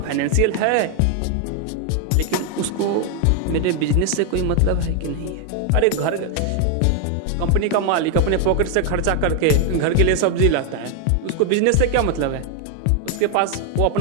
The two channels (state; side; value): different; both; correlation 0.00